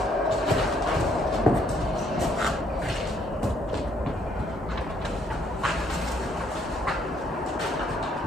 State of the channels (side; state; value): both; normal; correlation 0.68